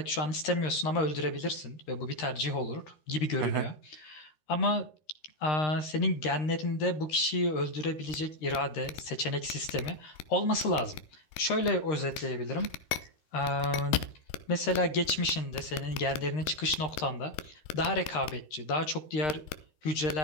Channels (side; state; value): right; late; 13 ms